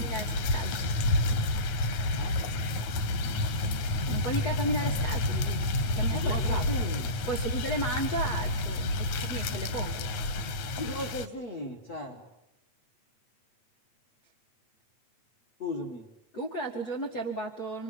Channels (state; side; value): late; right; 9.2 ms